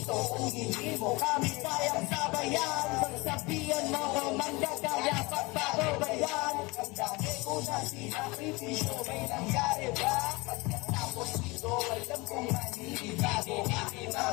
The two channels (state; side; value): quieter; right; 24.5 dB